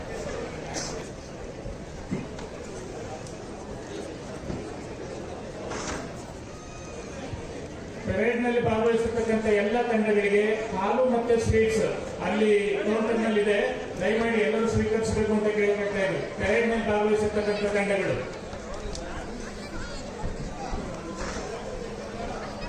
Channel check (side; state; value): both; identical; correlation 1.00